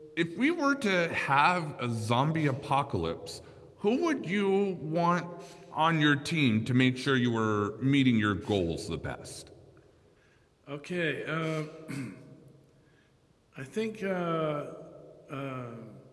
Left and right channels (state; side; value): identical; both; correlation 1.00